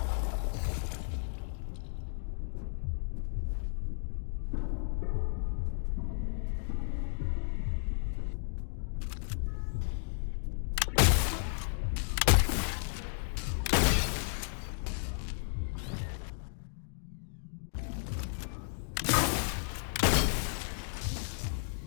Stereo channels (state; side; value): silent; right; digital silence